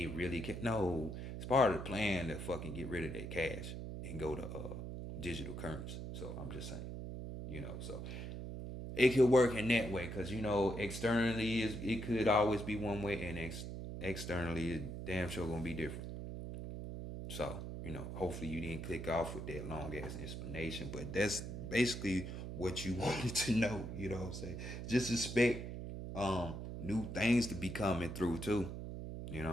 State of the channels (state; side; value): noise; right; hum, 7 dB below the sound